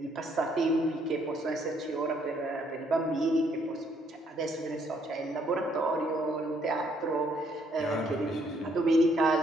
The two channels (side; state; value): both; normal; correlation 0.69